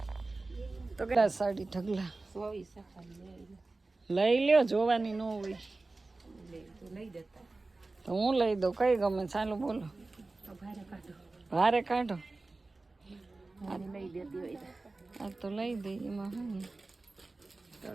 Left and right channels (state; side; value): quieter; left; 3.3 dB